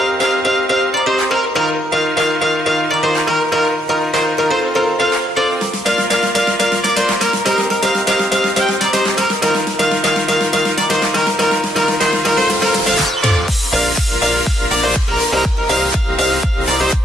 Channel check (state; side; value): normal; both; correlation 0.75